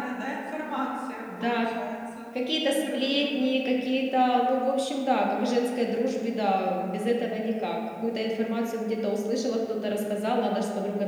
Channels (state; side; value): identical; both; correlation 1.00